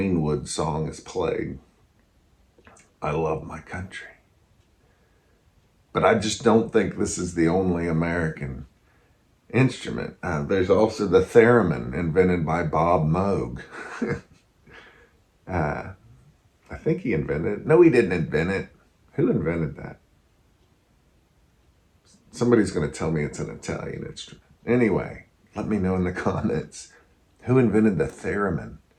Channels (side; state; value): both; identical; correlation 1.00